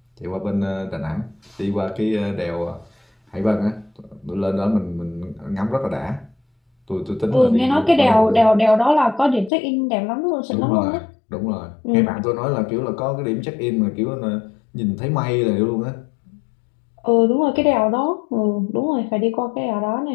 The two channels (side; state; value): right; drops out; at 9.5 s